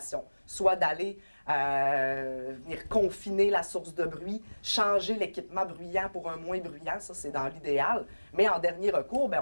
soit d'aller venir confiner la source de bruit, changer l'équipement bruyant pour un moins bruyant, ça c'est dans l'idéal, mais en dernier recours, bien,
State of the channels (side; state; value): both; inverted; correlation -1.00